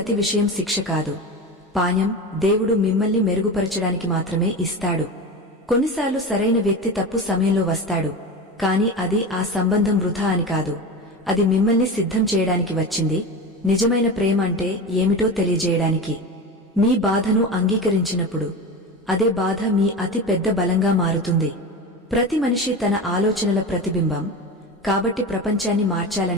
విషయం శిక్ష కాదు, పాణ్యం. దేవుడు మిమ్మల్ని మెరుగుపరచడానికి మాత్రమే ఇస్తాడు. కొన్నిసార్లు సరైన వ్యక్తి తప్పు సమయంలో వస్తాడు, కాని అది ఆ సంబంధం వృథా అని కాదు, అది మిమ్మల్ని సిద్ధం చేయడానికి వచ్చింది. నిజమైన ప్రేమ అంటే ఏమిటో తెలియజేయడానికి. మీ బాధను అంగీకరించినప్పుడు అదే బాధ మీ అతి పెద్ద బలంగా మారుతుంది. ప్రతి మనిషి తన ఆలోచనల ప్రతిబింబం, కాబట్టి ప్రపంచాన్ని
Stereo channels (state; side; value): normal; both; correlation 0.25